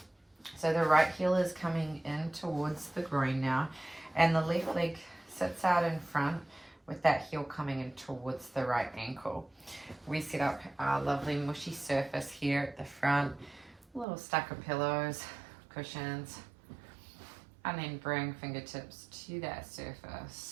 So the right heel is coming in towards the groin now, and the left leg sits out in front with that heel coming in towards the right ankle. We set up our lovely mushy surface here at the front, a little stack of pillows, cushions, and then bring fingertips to that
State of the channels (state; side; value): drops out; left; at 14.1 s